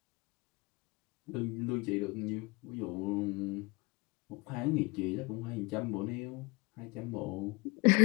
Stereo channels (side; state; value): right; quieter; 26.3 dB